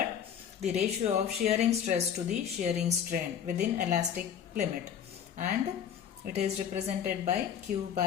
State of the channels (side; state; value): right; quieter; 8.5 dB